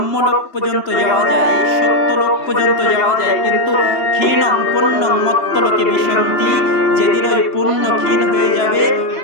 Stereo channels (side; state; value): right; late; 3.0 ms